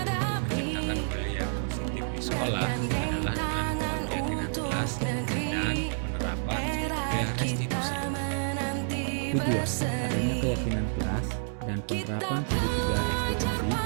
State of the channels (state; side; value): silent; left; digital silence